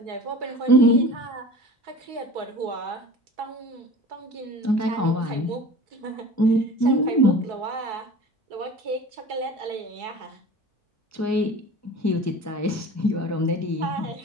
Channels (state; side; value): normal; both; correlation 0.39